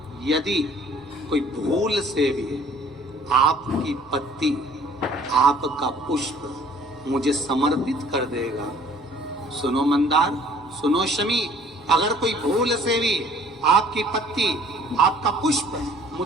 यदि कोई भूल से भी आपकी पत्ती, आपका पुष्प मुझे समर्पित कर देगा, सुनो मंदार, सुनो शमी, अगर कोई भूल से भी आपकी पत्ती, आपका पुष्प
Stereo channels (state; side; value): normal; both; correlation 0.54